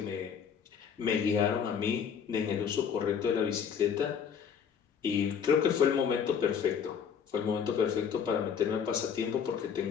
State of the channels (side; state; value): right; quieter; 7.3 dB